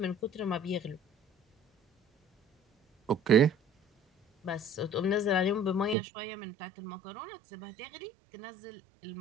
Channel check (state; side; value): drops out; left; at 6.0 s